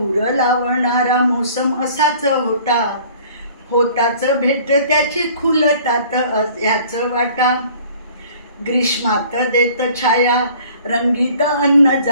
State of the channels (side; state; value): both; inverted; correlation -0.52